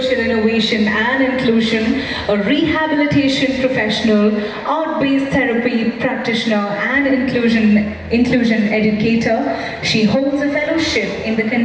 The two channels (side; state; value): both; identical; correlation 1.00